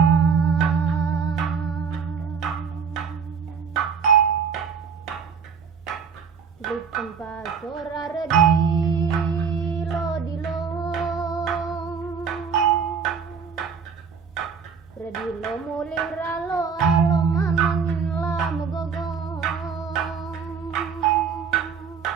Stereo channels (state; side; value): quieter; left; 6.1 dB